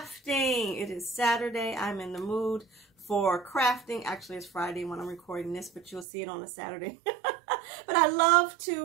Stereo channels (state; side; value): drops out; left; at 6.1 s